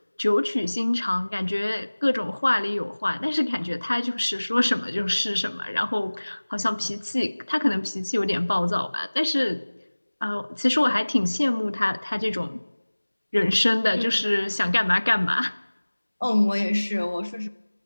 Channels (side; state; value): both; inverted; correlation -1.00